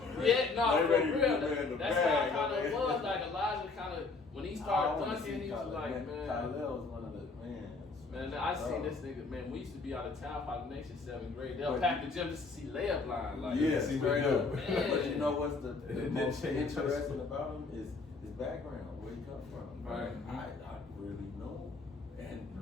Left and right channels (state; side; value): quieter; right; 4.0 dB